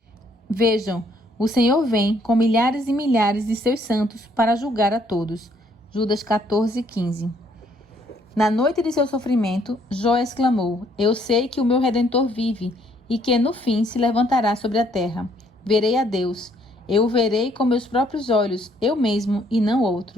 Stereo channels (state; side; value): normal; both; correlation 0.66